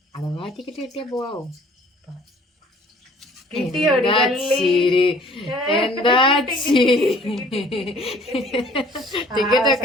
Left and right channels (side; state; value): both; normal; correlation 0.54